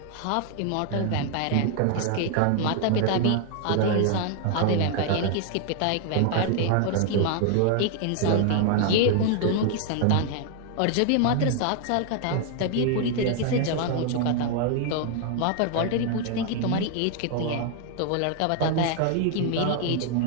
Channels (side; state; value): both; different; correlation 0.00